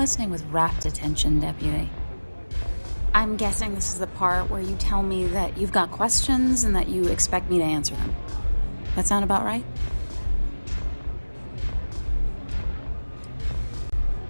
with rapt attention, Deputy. I'm guessing this is the part where you tell me that you've got questions and that you expect me to answer them. That sound about right?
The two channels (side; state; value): both; inverted; correlation -1.00